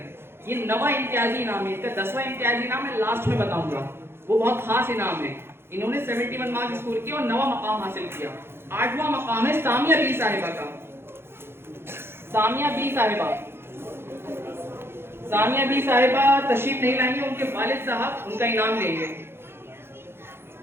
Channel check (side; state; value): left; late; 0.11 ms